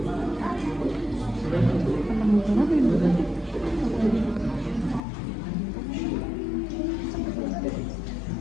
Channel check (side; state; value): right; drops out; at 5.0 s